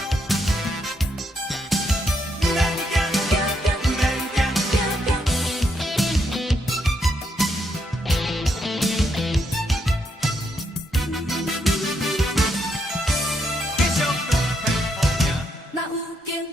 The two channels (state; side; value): normal; both; correlation 0.78